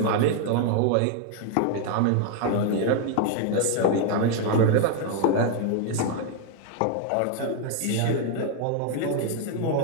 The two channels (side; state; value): both; different; correlation 0.00